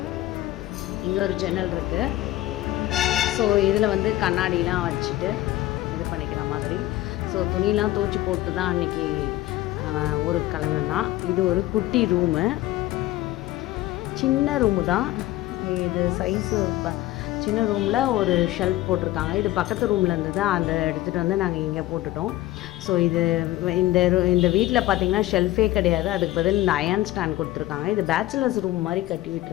இங்கே ஒரு ஜன்னல் இருக்குது. ஸோ இதில் வந்து கண்ணாடிலாம் வச்சுட்டு இது பண்ணிக்கிற மாதிரி. ஸோ துணியெலாம் துவச்சி போட்டு தான் அன்றைக்கி ஒரு கிழமைன்னா. இது ஒரு குட்டி ரூமு, சின்ன ரூமு தான் இது. சைஸு சின்ன ரூமில் ஒரு ஷெல்ஃப் போட்டிருக்காங்க. இது பக்கத்து ரூமில் இருந்தது, அந்த எடுத்துகிட்டு வந்து நாங்கள் இங்கே போட்டுட்டோம். ஸோ இது இந்த வீட்டில் பார்த்திங்கன்னா ஷெல்ஃபே கிடையாது. அதுக்கு பதில் இந்த அயன் ஸ்டாண்ட் கொடுத்துருக்காங்க. இது பேச்சுலர்ஸ் ரூம் மாதிரி கட்டி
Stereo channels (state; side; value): quieter; right; 16.0 dB